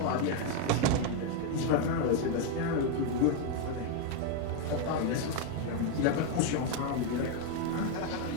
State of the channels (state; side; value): different; both; correlation 0.01